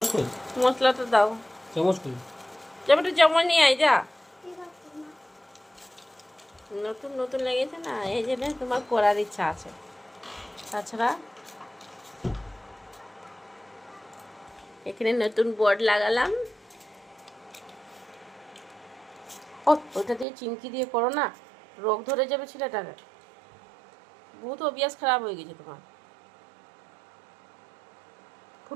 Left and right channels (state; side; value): drops out; left; at 20.2 s